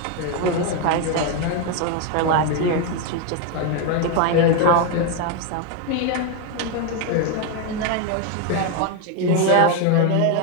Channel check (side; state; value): both; different; correlation 0.01